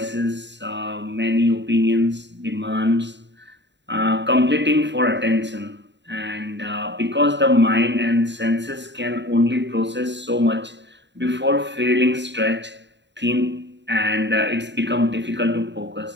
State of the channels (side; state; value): left; late; 0.52 ms